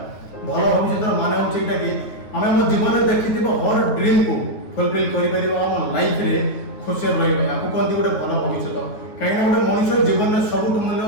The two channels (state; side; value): late; right; 9.5 ms